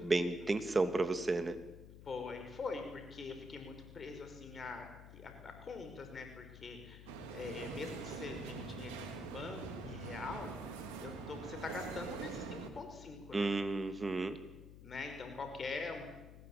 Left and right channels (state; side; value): noise; left; hum, 14 dB below the sound